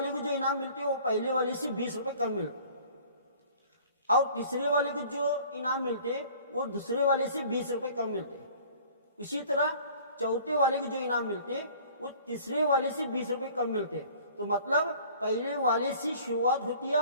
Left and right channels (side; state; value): both; inverted; correlation -0.50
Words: को जो इनाम मिलते हैं वो पहले वाले से 20 रुपये कम मिलते, और तीसरे वाले को जो इनाम मिलते हैं वो दूसरे वाले से 20 रुपये कम मिलते हैं। उसी तरह चौथे वाले को जो इनाम मिलते हैं वो तीसरे वाले से 20 रुपये कम मिलते हैं। तो मतलब पहले वाले से शुरुआत होती